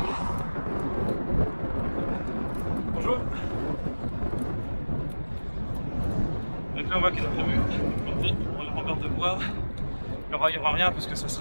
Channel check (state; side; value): inverted; both; correlation -1.00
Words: Bonjour. Donc là on voit qu'ils ont prévu pour la rembarre de bois. Il n'y aura rien parce que ça